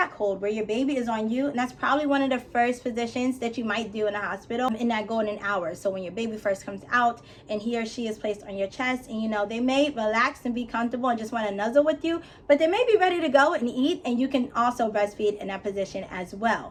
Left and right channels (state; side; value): identical; both; correlation 1.00